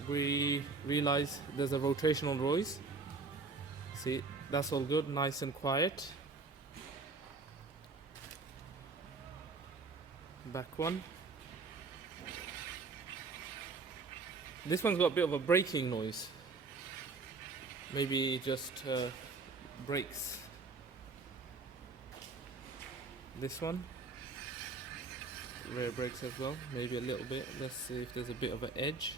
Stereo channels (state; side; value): quieter; left; 4.1 dB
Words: we realized there's a rotational noise. See, that's all good, nice and quiet. Back one. This one's got a bit of a braking noise. Maybe just brakes. This one, rear brakes as well. Maybe a little bit. Let's see if there's a bit of an edge.